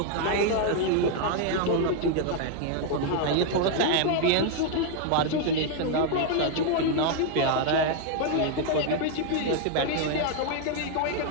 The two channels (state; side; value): different; both; correlation 0.00